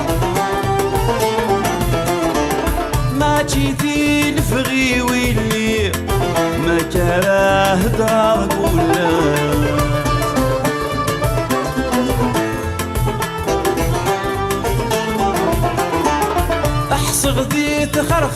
جيتي الفغي واللي ما كراه دراك ولا احصغ ذي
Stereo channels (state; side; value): identical; both; correlation 1.00